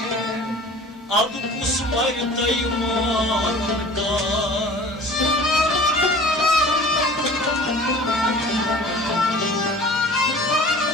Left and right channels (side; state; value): both; normal; correlation 0.44